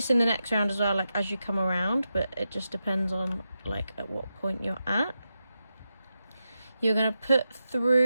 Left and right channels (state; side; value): inverted; both; correlation -0.88